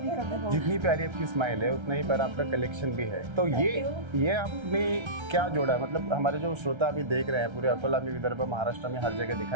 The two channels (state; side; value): late; left; 1.3 ms